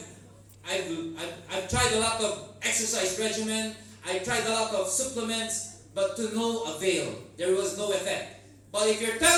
tried a lot of exercise regimen, I tried a lot of supplements, but to no avail. There was no effect. But if you're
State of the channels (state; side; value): identical; both; correlation 1.00